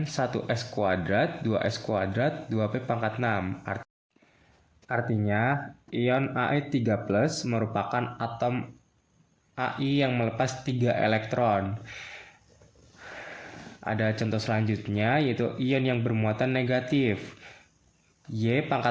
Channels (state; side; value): identical; both; correlation 1.00